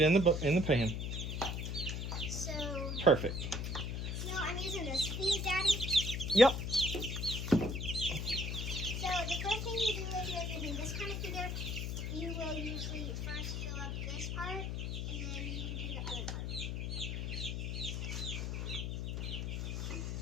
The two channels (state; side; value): noise; left; hum, 2 dB below the sound